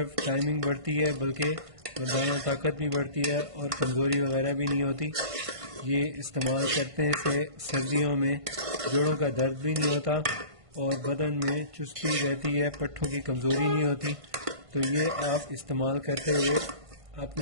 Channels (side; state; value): left; late; 1.5 ms